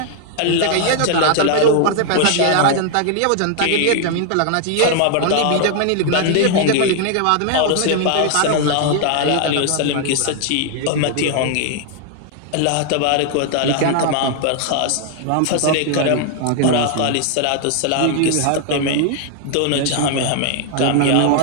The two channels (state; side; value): different; both; correlation 0.00